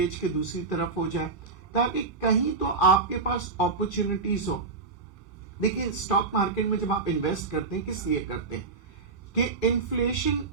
کے دوسری طرف ہو جائے، تاکہ کہیں تو آپ کے پاس اپرچونٹیز ہو. دیکھیں، سٹاک مارکیٹ میں جب آپ انویسٹ کرتے ہیں کس لیے کرتے ہیں؟ کہ انفلیشن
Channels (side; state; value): left; quieter; 4.3 dB